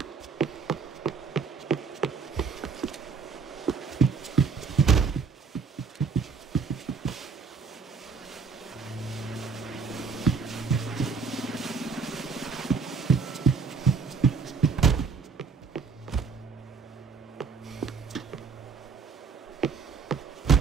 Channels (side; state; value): left; quieter; 5.3 dB